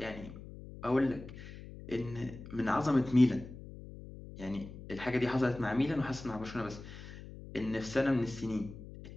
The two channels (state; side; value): noise; left; hum, 14 dB below the sound